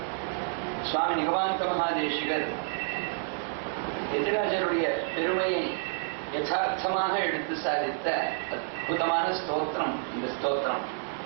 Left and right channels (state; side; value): silent; left; digital silence